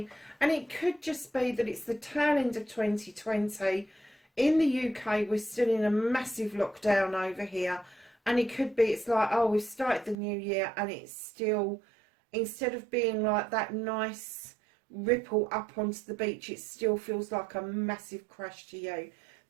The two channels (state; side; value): drops out; left; at 10.2 s